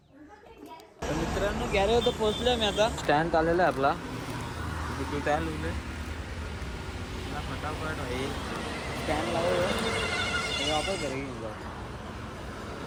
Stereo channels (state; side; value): identical; both; correlation 1.00